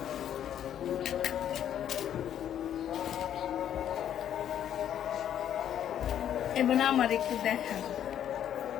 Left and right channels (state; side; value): quieter; right; 10.1 dB